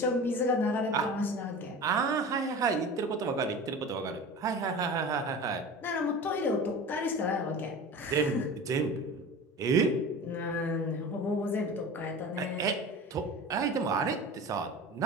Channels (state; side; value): normal; both; correlation 0.34